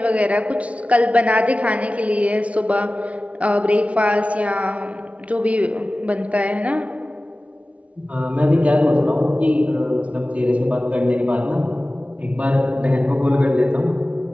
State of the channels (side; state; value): left; late; 0.064 ms